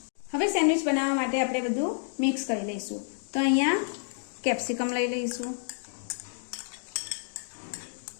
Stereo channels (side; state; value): right; silent; digital silence